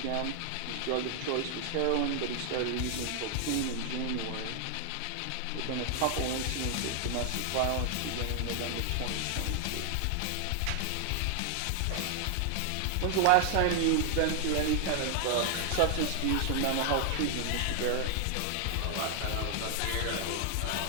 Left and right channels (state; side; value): different; both; correlation 0.00